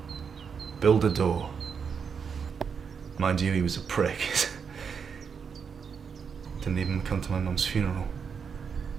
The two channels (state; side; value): quieter; left; 6.4 dB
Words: build a door. Mind you, he was a prick. Didn't even come to my mum's funeral.